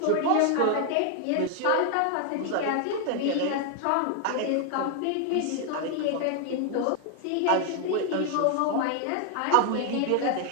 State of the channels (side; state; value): both; different; correlation 0.00